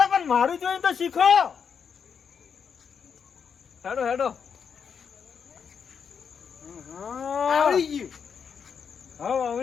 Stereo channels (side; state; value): right; quieter; 6.8 dB